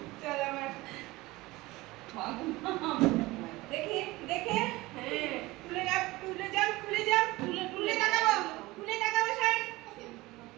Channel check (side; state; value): left; quieter; 20.3 dB